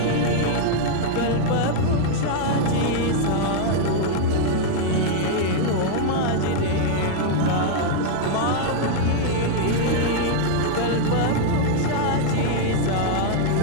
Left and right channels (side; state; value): both; different; correlation -0.01